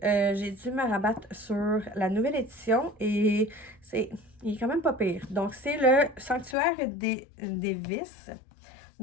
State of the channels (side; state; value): right; drops out; at 6.6 s